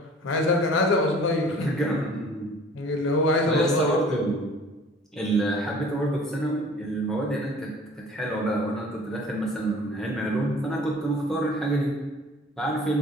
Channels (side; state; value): both; normal; correlation 0.49